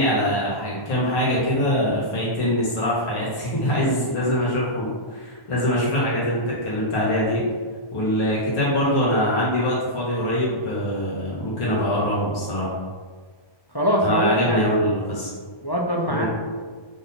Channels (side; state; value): right; late; 1.1 ms